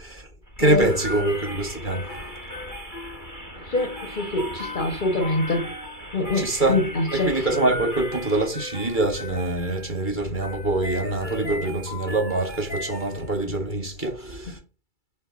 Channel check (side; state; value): right; late; 2.3 ms